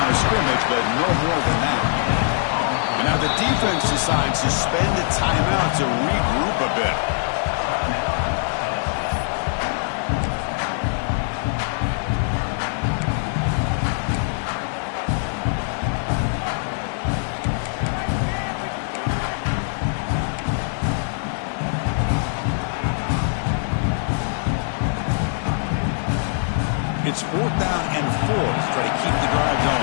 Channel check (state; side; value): silent; right; 59 dB below the other